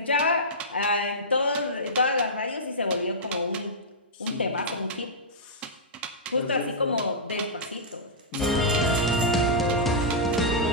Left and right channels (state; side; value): normal; both; correlation -0.14